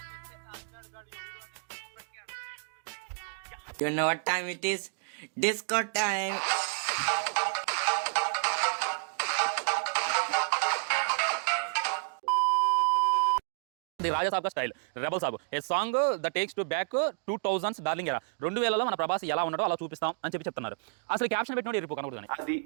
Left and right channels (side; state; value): left; silent; digital silence